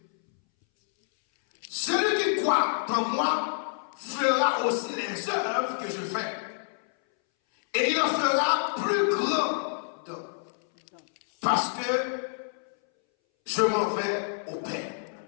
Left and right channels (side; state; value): right; silent; 60 dB below the other